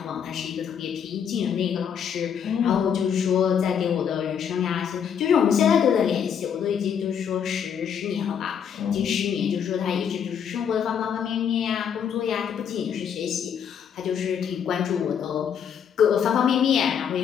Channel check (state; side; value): quieter; right; 7.9 dB